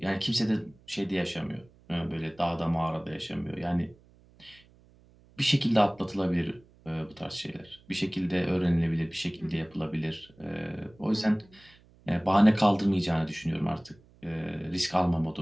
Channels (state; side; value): noise; right; hum, 28 dB below the sound